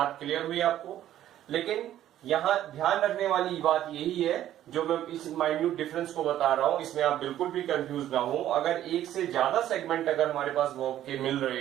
क्लियर हुई आपको? लेकिन यहां ध्यान रखने वाली बात यही है, जो मैं इस माइन्यूट डिफरेंस को बता रहा हूं, इसमें आप बिल्कुल भी कंफ्यूज ना हो। अगर एक से ज्यादा सेगमेंट अगर हमारे पास वर्ब के मिल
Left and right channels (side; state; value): left; quieter; 12.2 dB